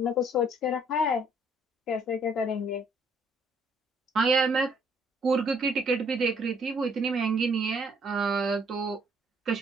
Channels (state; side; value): normal; both; correlation 0.65